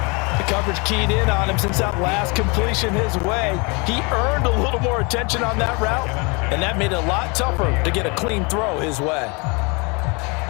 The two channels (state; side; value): quieter; right; 30.0 dB